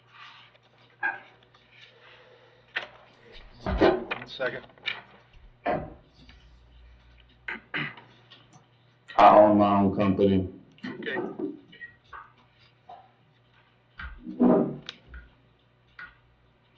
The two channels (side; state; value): both; identical; correlation 1.00